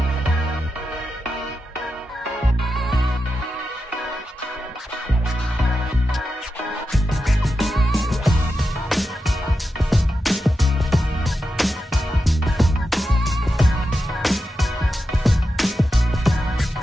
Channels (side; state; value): both; normal; correlation 0.89